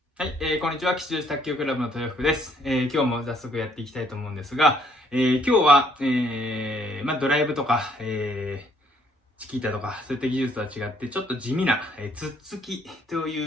はい、こんにちは。吉祥寺卓球クラブの豊福です。今日も早速やっていきたいと思うんですが、今日は、ドライブとか、チキータとか、そういった技術とは違って、ちょっと地味な、つっつきと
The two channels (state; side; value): normal; both; correlation 0.66